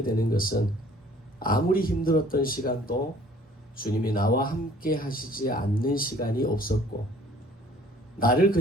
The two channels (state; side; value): normal; both; correlation 0.54